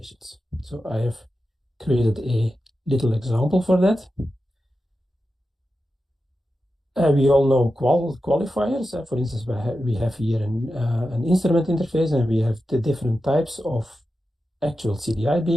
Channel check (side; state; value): both; normal; correlation 0.91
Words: So I have created a little example for that. We all know qualifiers. For instance, we have here an instrument interface, and we have the different types of actual CDI